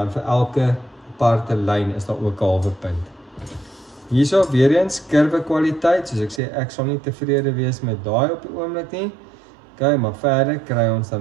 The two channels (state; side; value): drops out; left; at 6.4 s